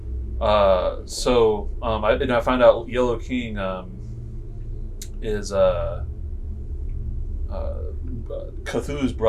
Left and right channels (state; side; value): identical; both; correlation 1.00